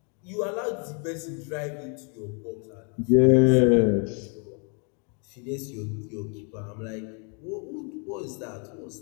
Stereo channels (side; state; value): right; quieter; 37.8 dB